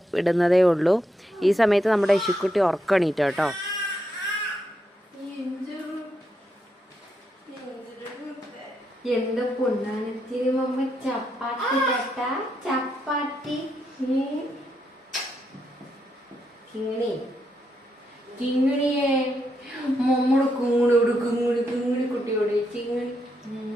ഇടുന്നതേ ഉള്ളൂ. ഈ സമയത്ത് നമ്മുടെ ഇശുക്കുട്ടി ഉറക്കണീട്ടോ കേട്ടോ. എന്റെ പൊണ്ണാനത്തിന് മമ്മ ചപ്പാത്തി കട്ട ചപ്പാത്തി കിങ്ങണി കിങ്ങിണിയെ മമ്മയുടെ കുങ്ങുടിയോട് കിങ്ങിണി കുട്ടിയോട് ചിങ്ങണി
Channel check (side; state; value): both; normal; correlation 0.81